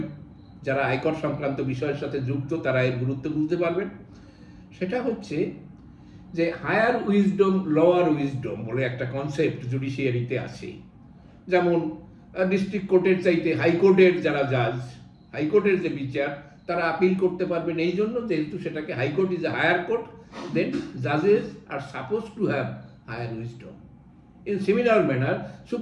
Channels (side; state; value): both; identical; correlation 1.00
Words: যারা আয়কর সংক্রান্ত বিষয়ের সাথে যুক্ত তারা এর গুরুত্ব বুঝতে পারবেন। সেটা হচ্ছে যে হায়ার উইজডম, লোয়ার উইজডম বলে একটা কনসেপ্ট জুডিশিয়ারিতে আছে। যেমন ডিস্ট্রিক্ট কোর্টের চাইতে হাইকোর্টের যারা জাজ, হাইকোর্টের যে বিচার, তারা আপিল করতে পারবেন এই জন্য যেহেতু সেটাকে high court is a higher court, then জাজেস are supposed to have higher wisdom. In similar manner